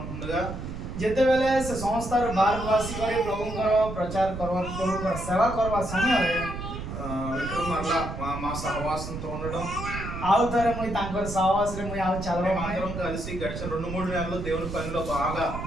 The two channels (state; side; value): noise; right; rumble, 7 dB below the sound